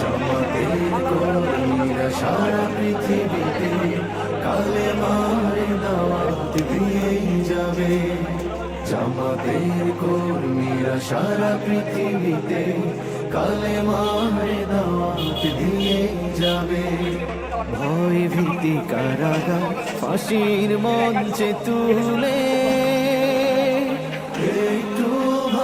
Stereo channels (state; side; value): identical; both; correlation 1.00